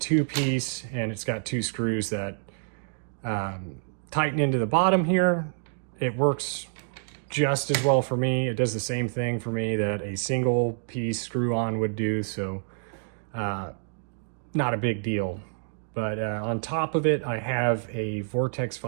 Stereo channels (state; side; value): silent; left; digital silence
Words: and it's got 2 screws that tighten into the bottom here. It works just as well for me. It does the same thing for me that a single piece screw on would do, so not a big deal. But on top of it, I have a Vortex